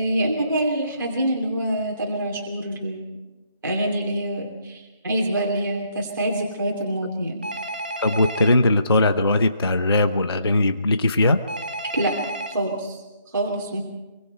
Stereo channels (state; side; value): inverted; both; correlation -0.70